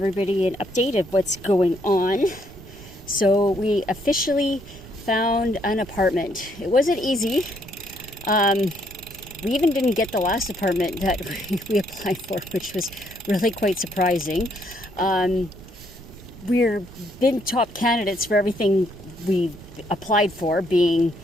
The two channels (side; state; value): right; noise; rumble, 19 dB below the sound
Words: an update of what's going on. So we officially found an apartment. It wasn't easy. We even didn't get the last apartment that we applied for, which was really quite surprising. We're been top candidates for everything we applied for, being